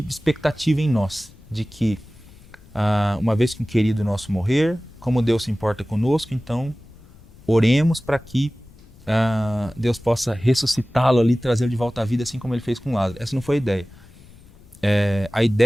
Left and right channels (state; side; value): noise; left; rumble, 23 dB below the sound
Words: de expectativa em nós, de que uma vez que um querido nosso morrer, como Deus se importa conosco, então oremos para que Deus possa ressuscitá-lo ali, trazê-lo de volta à vida, assim como ele fez com Lázaro. Essa não foi a ideia. A